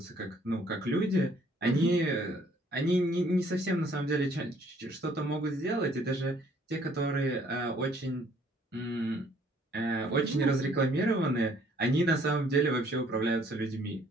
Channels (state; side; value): normal; both; correlation 0.61